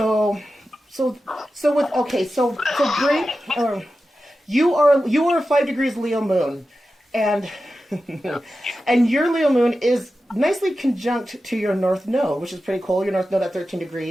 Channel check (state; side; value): normal; both; correlation 0.92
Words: with, okay, so great, you are 5 degrees Leo moon, and and your Leo moon is nicely conjunct to your North Node, which is pretty cool. Your North Node at 13